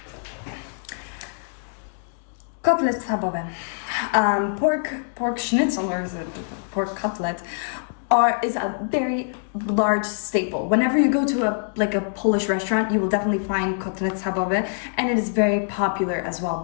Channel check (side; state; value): right; silent; digital silence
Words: Kotlet Schabowy. Pork schnitzel, or is it pork cutlet, is a very large staple. Whenever you go to a Polish restaurant, you will definitely find Kotlet Schabowy, and it is very popular as well.